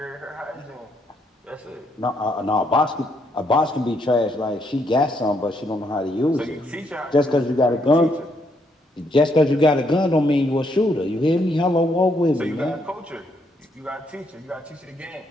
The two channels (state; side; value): normal; both; correlation 0.74